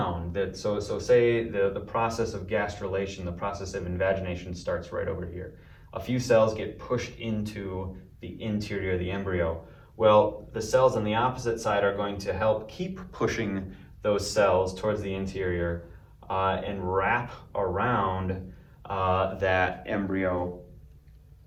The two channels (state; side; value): identical; both; correlation 1.00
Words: that. So say the process of gastrulation, the process of invagination starts right over here. A few cells get pushed into the interior of the embryo. Well, the cells on the opposite side are going to help keep pushing those cells towards the interior and wrap around that embryo